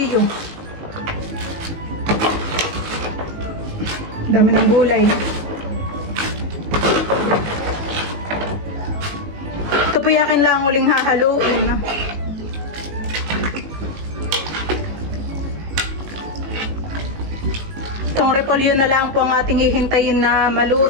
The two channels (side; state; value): left; late; 19 ms